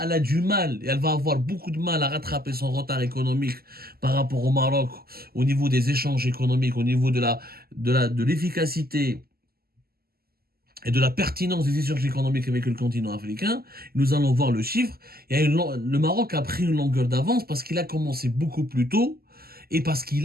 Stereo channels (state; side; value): late; left; 0.45 ms